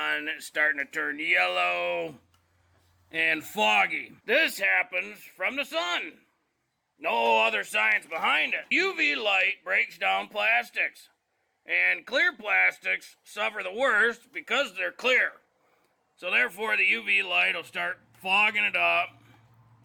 It's starting to turn yellow and foggy. This happens from the sun. No other science behind it. UV light breaks down plastics. And clear plastics suffer the worst because they're clear. So therefore the UV light will start fogging it up,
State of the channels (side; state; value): both; identical; correlation 1.00